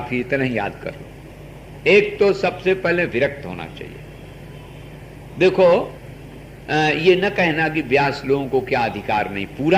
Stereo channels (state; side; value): identical; both; correlation 1.00